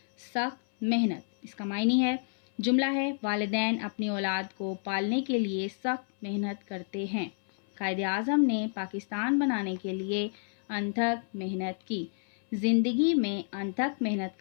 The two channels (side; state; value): right; silent; 58 dB below the other